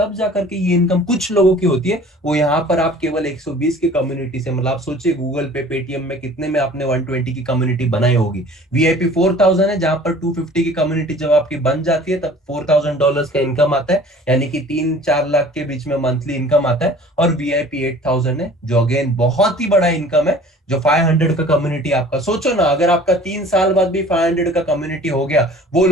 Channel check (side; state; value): both; normal; correlation 0.48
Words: जाकर के ये इनकम कुछ लोगों की होती है। वो यहाँ पर आप केवल 120 की कम्युनिटी से, मतलब आप सोचिए गूगल पे, पेटीएम में कितने में आपने 120 की कम्युनिटी बनाई होगी। वीआईपी 4000 है, जहां पर 250 की कम्युनिटी जब आपकी बन जाती है तब $4000 का इनकम आता है, यानी कि 3-4 लाख के बीच में मंथली इनकम आता है। और वीआईपी 8000 है, जो अगेन बहुत ही बड़ा इनकम है, जो 500 का कम्युनिटी आपका। सोचो ना, अगर आपका 3 साल बाद भी 500 का कम्युनिटी हो गया, वो